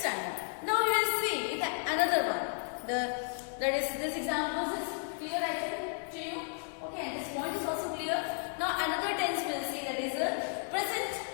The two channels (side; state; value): right; silent; 56 dB below the other